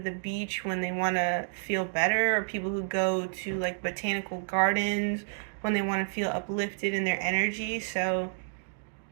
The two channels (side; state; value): left; silent; digital silence